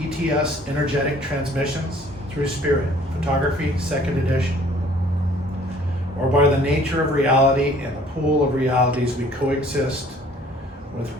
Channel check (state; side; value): normal; both; correlation 0.56